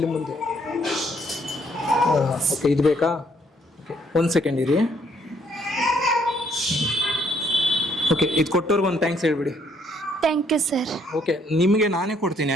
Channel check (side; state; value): both; normal; correlation 0.68